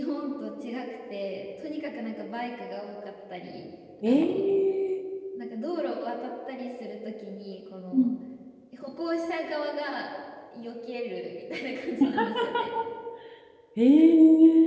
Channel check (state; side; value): identical; both; correlation 1.00